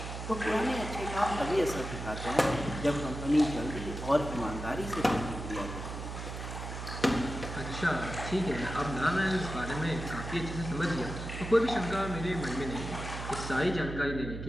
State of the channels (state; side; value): noise; right; hum, 7 dB below the sound